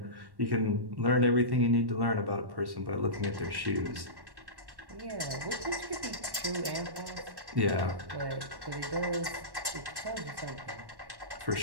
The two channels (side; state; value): left; late; 1.1 ms